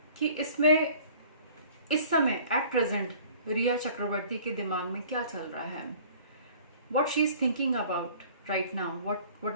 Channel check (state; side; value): inverted; both; correlation -0.50